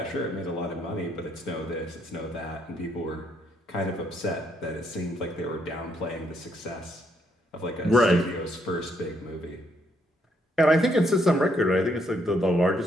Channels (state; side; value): normal; both; correlation 0.73